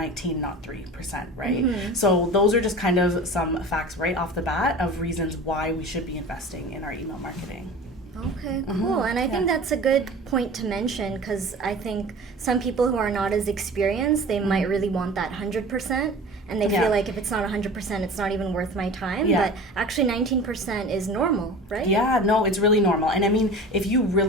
not 3%, right? So those are just kind of some facts right off the bat of reasons why we should be investing in our email marketing. Okay, cool. And I think that's a good point to mention, because I think some people who are not as experienced, they might really want that 100%. And they feel like if it's not 100%, it's not even worth my time. But actually 19% is normal, right? Yeah, no, it's really normal. And I mean, if you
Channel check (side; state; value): both; normal; correlation 0.37